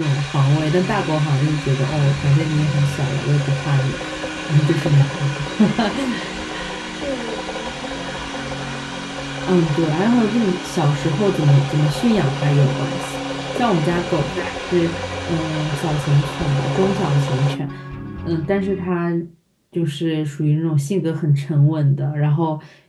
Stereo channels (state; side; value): identical; both; correlation 1.00